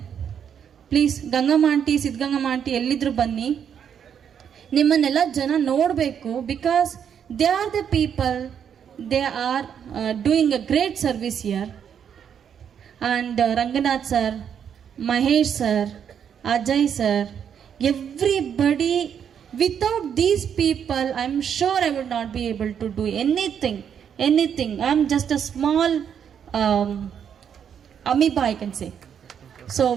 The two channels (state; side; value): quieter; left; 8.1 dB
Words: Please Gangamma aunty, Siddhagangamma aunty ಎಲ್ಲಿದ್ರು ಬನ್ನಿ. ನಿಮ್ಮನ್ನೆಲ್ಲ ಜನ ನೋಡಬೇಕು. Because they are the people, they are doing a great service here. And Ranganath sir, Mahesh sir, Ajay sir, everybody. Without these people I am sure I would not be able to do anything. I am just a small amoeba, I can say. So